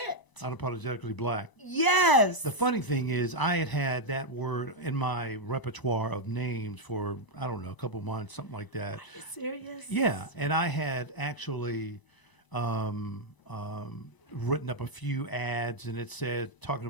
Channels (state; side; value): late; right; 1.0 ms